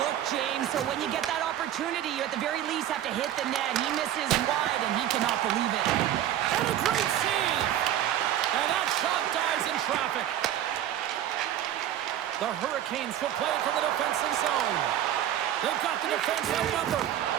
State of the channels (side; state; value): left; quieter; 11.5 dB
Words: James. So when you get that opportunity, you at the very least have to hit the net. He misses wide, and he cannot believe it. And a great save. And that shot dies in traffic. The Hurricanes will play from the defensive zone. They've got the defense outnumbered.